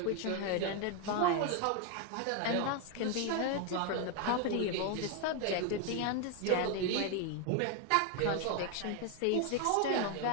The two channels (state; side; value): different; both; correlation 0.01